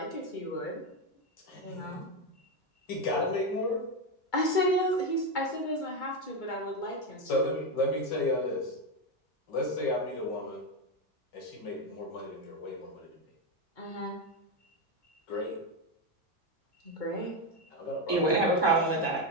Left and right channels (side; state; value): right; late; 2.2 ms